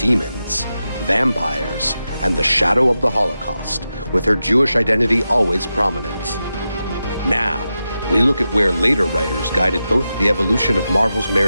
vampires, and the shadow of the Holocaust, with her Jewish identity always prominent. Now, we look at where later writers guided both the evolution of Marvel's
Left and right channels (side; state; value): both; inverted; correlation -0.90